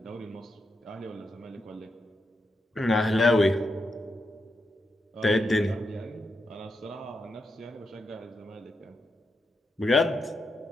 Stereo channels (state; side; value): normal; both; correlation 0.84